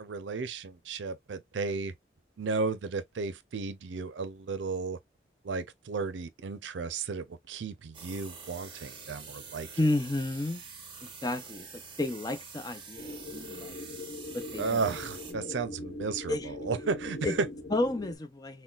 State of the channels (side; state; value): both; normal; correlation 0.31